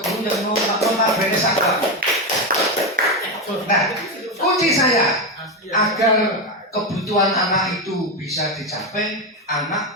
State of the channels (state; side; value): normal; both; correlation 0.11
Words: yang notabene sakral. Nah, kunci saya agar kebutuhan anak itu bisa dicapai, anak